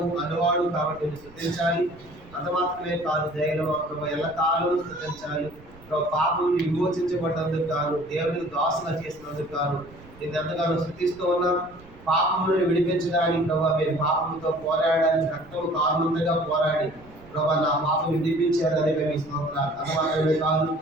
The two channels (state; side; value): noise; right; rumble, 22 dB below the sound